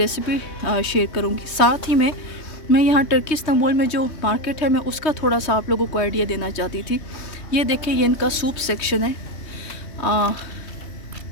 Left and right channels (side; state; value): right; late; 3.2 ms